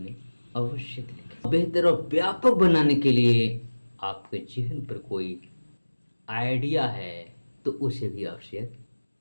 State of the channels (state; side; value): inverted; both; correlation -1.00